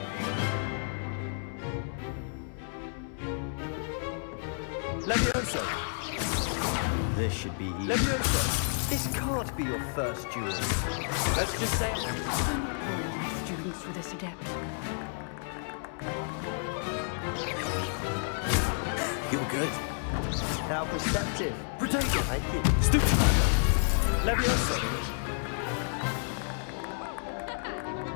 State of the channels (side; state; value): right; silent; 57 dB below the other